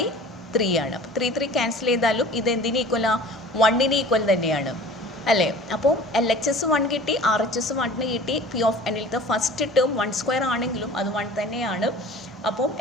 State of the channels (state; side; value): normal; both; correlation 0.43